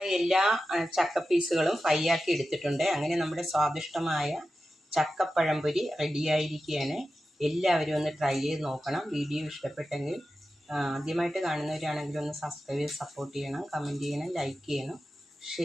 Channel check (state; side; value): normal; both; correlation 0.92